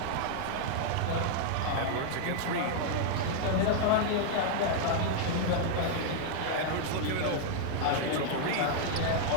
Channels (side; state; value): both; different; correlation -0.01